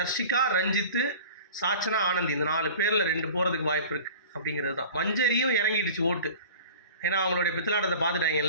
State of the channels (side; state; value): both; inverted; correlation -0.41